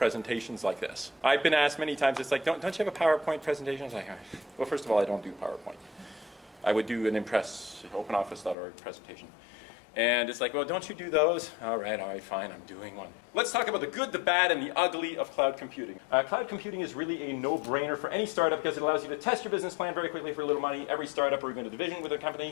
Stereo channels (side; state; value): right; drops out; at 8.6 s